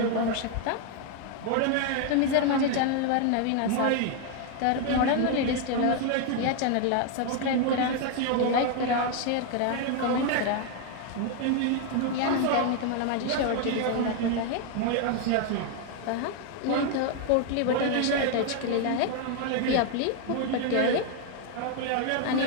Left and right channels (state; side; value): different; both; correlation 0.01